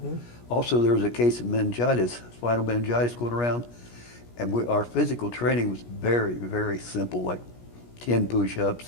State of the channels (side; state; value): right; late; 17 ms